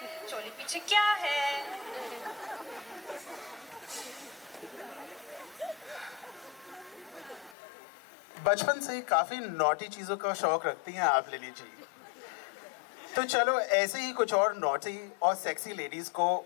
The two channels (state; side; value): drops out; right; at 7.6 s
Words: चोली पीछे क्या है. बचपन से ही काफी नॉटी चीजों का शौक रखती हैं आप लिली जी. तो चलो ऐसे ही कुछ और नॉटी और सेक्सी लेडीज को